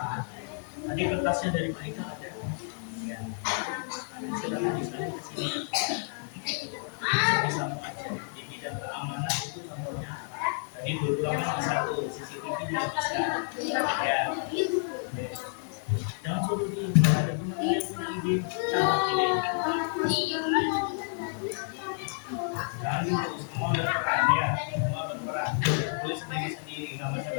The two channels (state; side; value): silent; right; 58 dB below the other